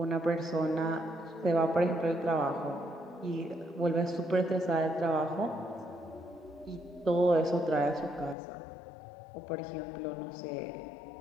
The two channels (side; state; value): right; drops out; at 8.3 s